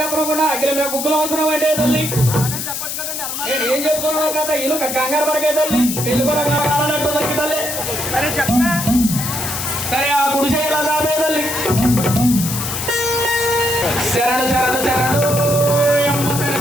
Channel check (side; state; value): left; noise; hiss, 4 dB below the sound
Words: అగ్గిల మీద గుగ్గులు అవసరం అంటే తల్లి. అలాగే చెప్పొచ్చు కదండి. నేను ఏం చెప్తున్నావు కదా ఇల్లు కంగారు పడకే తల్లి, పెళ్లి కూడా కావాలన్నట్టు తల్లి తల్లి. సరే చెప్పే. సరే ఆ గుడిసె ఎలా దాపే తల్లి. శరణు శరణు శరణు యమ్మ